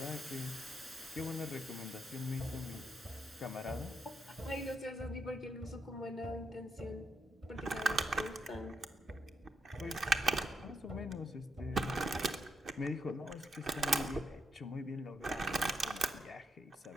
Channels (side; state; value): both; normal; correlation 0.81